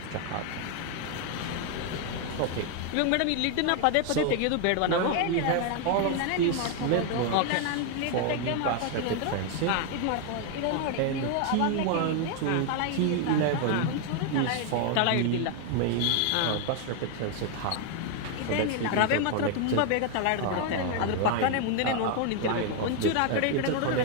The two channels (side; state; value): both; different; correlation 0.01